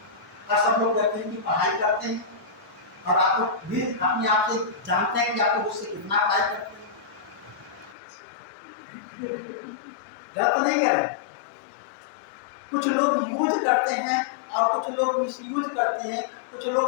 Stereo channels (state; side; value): drops out; right; at 8.0 s